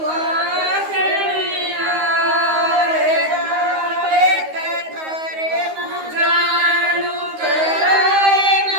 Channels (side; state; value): left; late; 13 ms